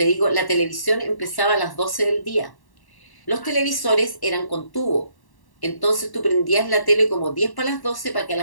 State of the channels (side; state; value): right; late; 1.1 ms